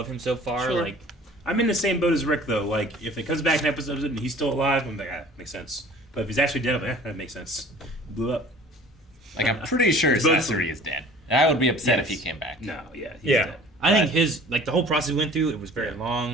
him so far. Sure. Like I'm in the same boat as Rick, though. Like, if it comes back in episodes and he's still alive, I'm like, ah, makes sense. But if he's actually dead, I'm like, that makes sense. Blew up. Like, I'm pretty sure Both Sasori is dead. And I would be upset if he Yes. came back. No, yeah. He's Yeah. dead. I think his the whole process we went through, it was very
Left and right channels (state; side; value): normal; both; correlation 0.47